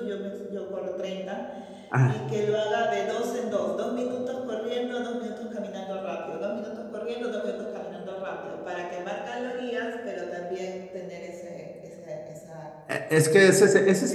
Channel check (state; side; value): identical; both; correlation 1.00